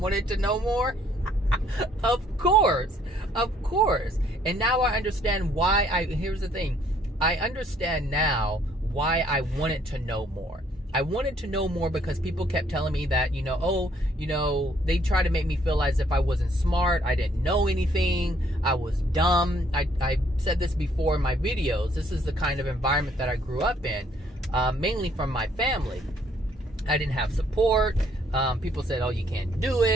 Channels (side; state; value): both; normal; correlation 0.65